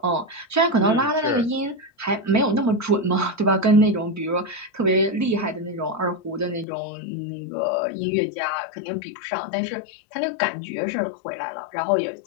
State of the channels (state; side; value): drops out; right; at 6.7 s